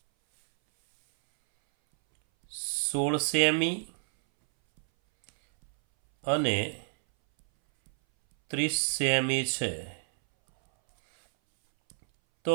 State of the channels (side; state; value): left; silent; 59 dB below the other